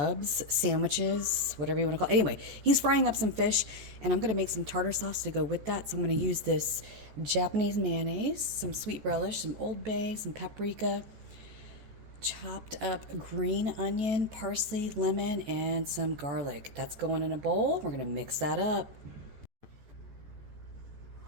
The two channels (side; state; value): left; late; 14 ms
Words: sandwiches, whatever you want to call it. Anyway, he's frying up some fish, and I'm going to make some tartar sauce to go with that. So I'm going to use this Japanese mayonnaise, some sweet relish, some Old Bay, some paprika, chopped up green onion, parsley, lemon, and some garlic. That's going in a bowl. We're going to mix that up.